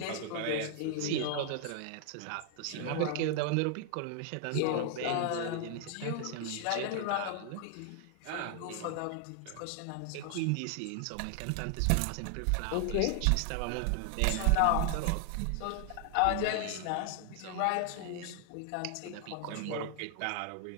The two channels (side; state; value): both; different; correlation 0.00